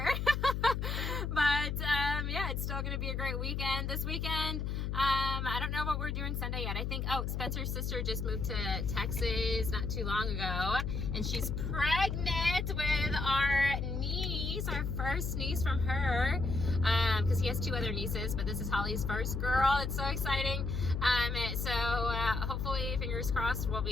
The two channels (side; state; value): left; noise; hum, 1 dB below the sound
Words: But yeah, it's still going to be a great weekend. This weekend, I don't know what we're doing Sunday yet. I think, Spencer's sister just moved to Texas not too long ago, and she's pregnant with our niece, our first niece from her, because he has 2 other nieces, but this is Holly's first girl. It's so exciting. So hopefully, fingers crossed, we'll